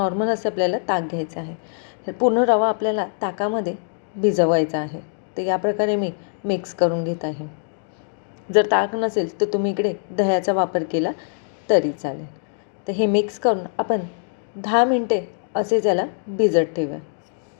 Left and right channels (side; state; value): right; silent; digital silence